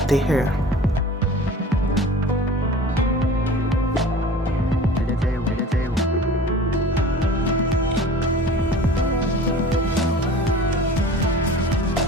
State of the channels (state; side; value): normal; both; correlation 0.41